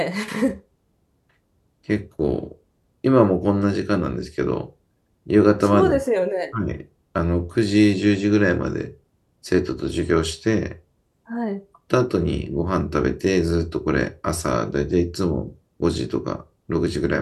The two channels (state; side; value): identical; both; correlation 1.00